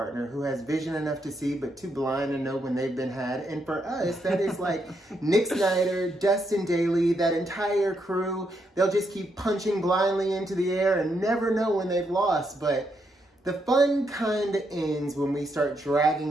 who has vision enough to see but too blind to know when they've been had. And for us, that is like Nick Snider, Dustin Daly, that entire crew. They'll just keep punching blindly into the air and never know when they've lost. But the fun kind of ends when we start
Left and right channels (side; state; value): both; normal; correlation 0.79